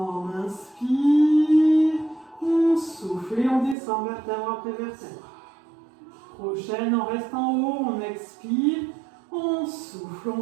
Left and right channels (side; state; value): left; drops out; at 3.8 s